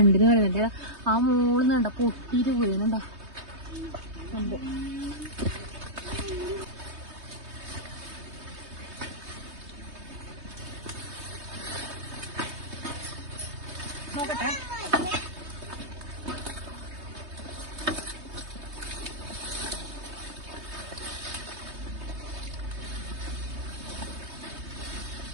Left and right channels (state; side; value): late; left; 3.2 ms